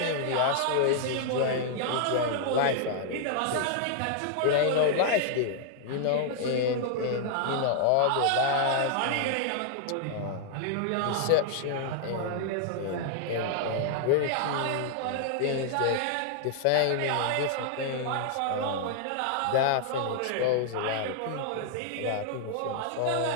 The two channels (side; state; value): both; different; correlation -0.01